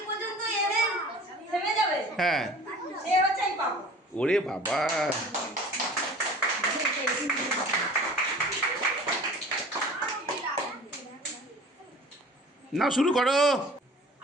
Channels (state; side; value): normal; both; correlation 0.44